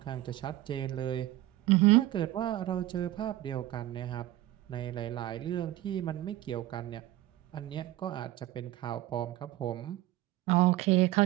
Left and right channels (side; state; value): left; quieter; 15.7 dB